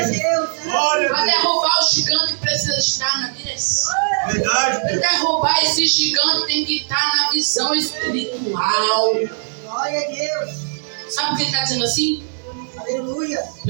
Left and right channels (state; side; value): silent; left; digital silence